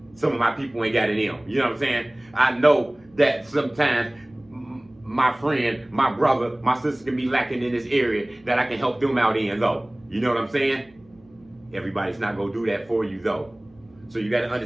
some of my people ain't got in them. You know what I'm saying? I know that sometimes my friend, my brother, my sister can be lacking in this area that I can help them out in though. You know what I'm saying? Everybody's not gonna do that for you though. So you gotta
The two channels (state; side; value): noise; right; hum, 29 dB below the sound